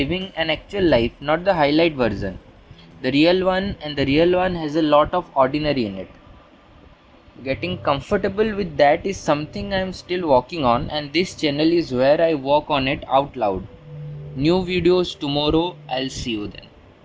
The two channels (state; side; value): identical; both; correlation 1.00